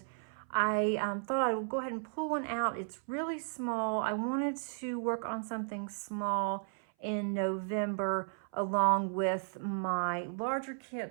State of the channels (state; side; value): silent; left; 55 dB below the other